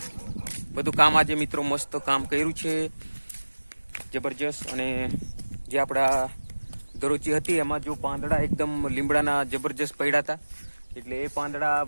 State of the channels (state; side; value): inverted; both; correlation -1.00